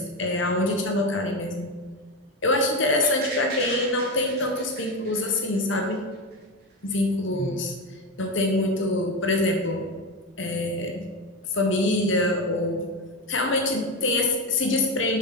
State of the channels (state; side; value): normal; both; correlation 0.17